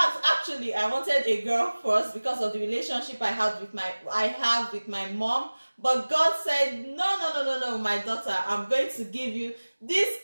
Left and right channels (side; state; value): both; inverted; correlation -1.00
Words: actually, I wanted a girl first because of the relationship I have with my mom. But God said, no, my daughter, I'm going to give you this